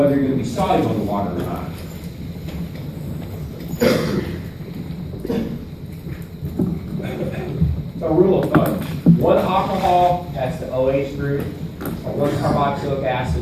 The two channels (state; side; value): identical; both; correlation 1.00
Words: you're going to be soluble in water or not. So rule of thumb, 1 alcohol, that's the OH group, or 1 carboxylic